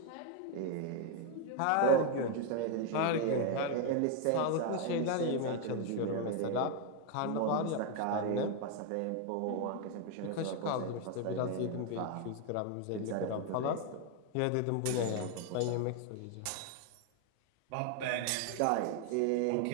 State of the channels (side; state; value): both; different; correlation 0.01